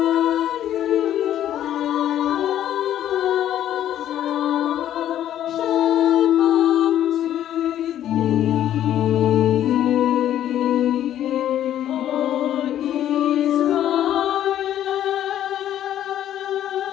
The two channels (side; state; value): right; quieter; 11.5 dB